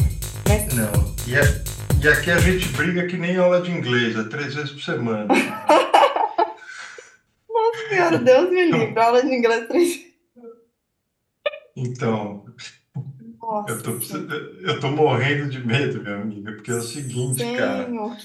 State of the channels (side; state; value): both; identical; correlation 1.00